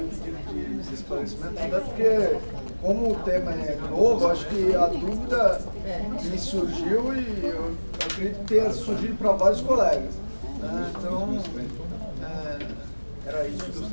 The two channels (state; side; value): inverted; both; correlation -1.00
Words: o pedido de esclarecimento, até porque, como o tema é novo, acho que a dúvida me surgiu e eu acredito que tenha surgido para vários colegas. Então, era isso que eu